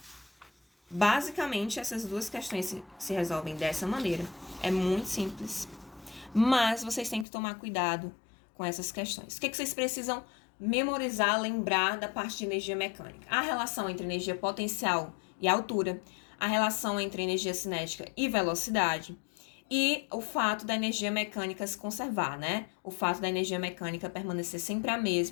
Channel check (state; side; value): drops out; right; at 7.2 s